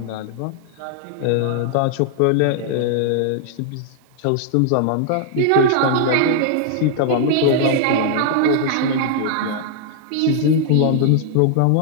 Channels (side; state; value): both; different; correlation 0.00